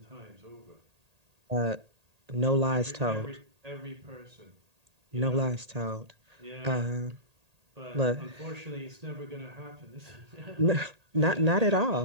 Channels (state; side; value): late; left; 1.8 ms